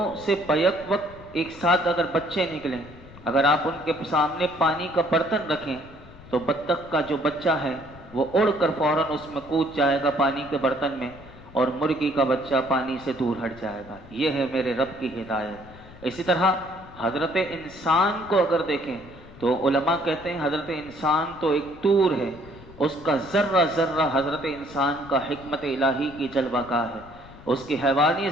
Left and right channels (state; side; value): noise; left; rumble, 19 dB below the sound